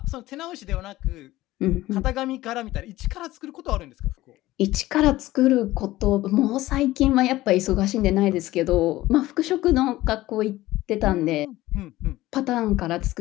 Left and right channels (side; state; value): right; quieter; 16.9 dB